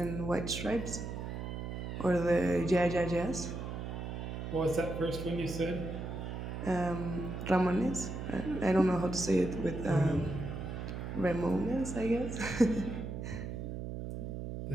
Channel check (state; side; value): noise; right; hum, 6 dB below the sound